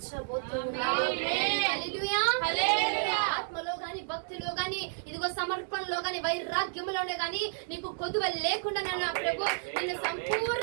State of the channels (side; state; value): left; silent; digital silence